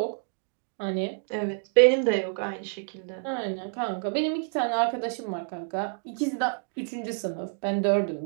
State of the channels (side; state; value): left; silent; digital silence